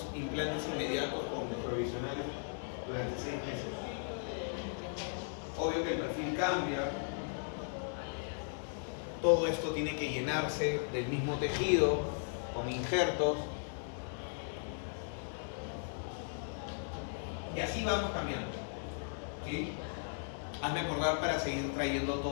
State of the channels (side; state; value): right; silent; 53 dB below the other